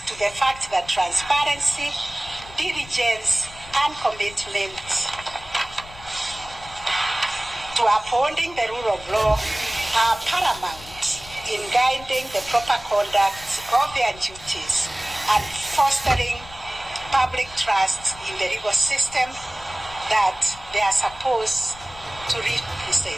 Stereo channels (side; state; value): left; noise; rumble, 18 dB below the sound